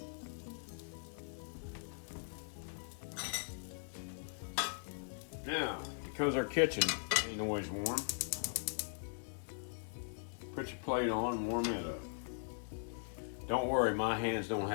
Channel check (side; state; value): right; silent; digital silence